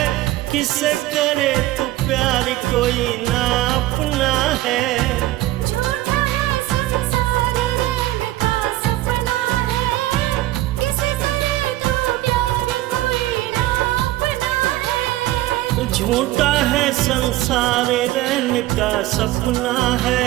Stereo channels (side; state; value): left; quieter; 16.2 dB